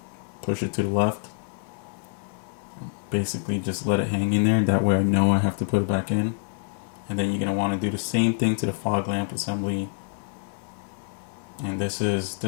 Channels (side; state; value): right; silent; 61 dB below the other